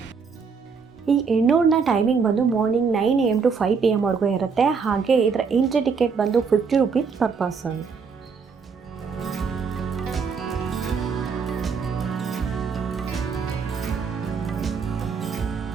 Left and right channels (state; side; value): quieter; left; 5.5 dB